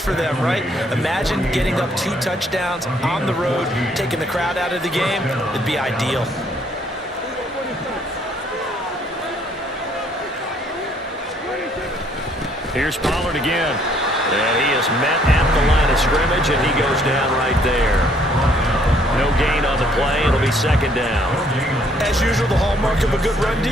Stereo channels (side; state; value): both; normal; correlation 0.65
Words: them, right? Imagine getting up 2 touchdowns on the road, taking the crowd out of the game. It'd be ideal. Here's Pollard again. And he is met at the line of scrimmage, and he goes down right there. No gain on the play. It'll be 2nd down. As usual, the hallmark of a good run